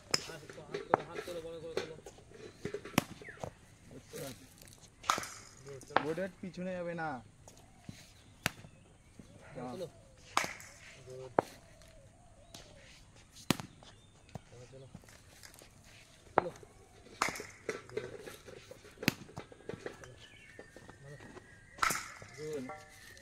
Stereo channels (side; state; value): both; identical; correlation 1.00